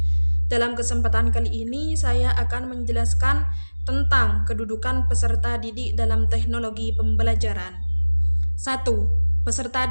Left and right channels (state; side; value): inverted; both; correlation -1.00